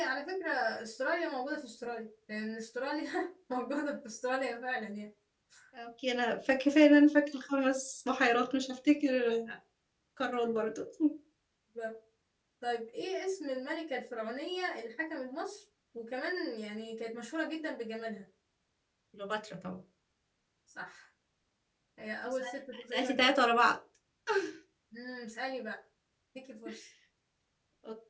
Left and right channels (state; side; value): identical; both; correlation 1.00